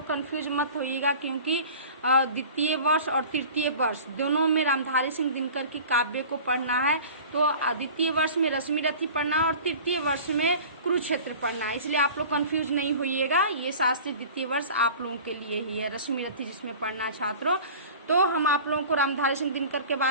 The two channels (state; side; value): inverted; both; correlation -0.41